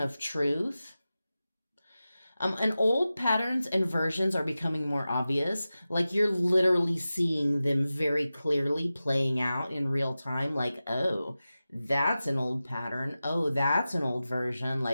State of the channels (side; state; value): both; inverted; correlation -0.95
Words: truth. And old patterns and versions are becoming more obvious. Like you're literally seeing them very clearly playing out in real time. Like, oh, that's an old pattern. Oh, that's an old version.